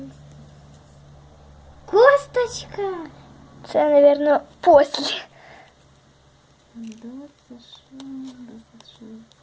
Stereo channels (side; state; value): both; identical; correlation 1.00